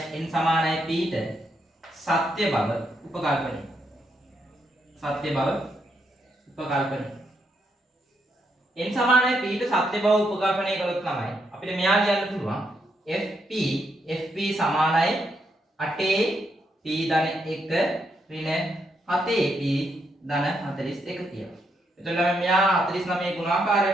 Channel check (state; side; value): normal; both; correlation 0.78